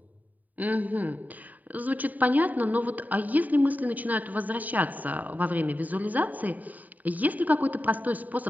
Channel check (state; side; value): late; left; 0.080 ms